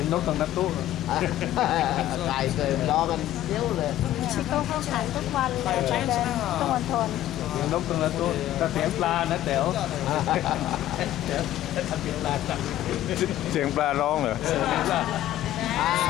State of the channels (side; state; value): right; quieter; 13.4 dB